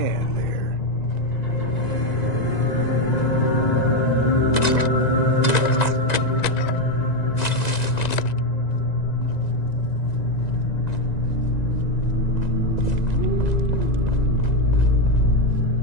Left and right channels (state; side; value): late; right; 1.9 ms